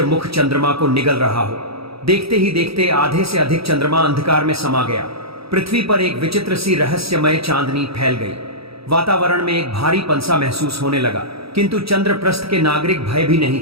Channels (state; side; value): late; left; 0.77 ms